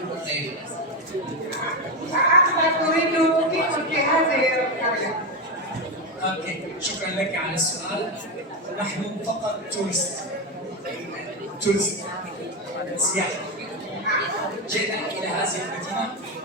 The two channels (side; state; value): both; normal; correlation 0.11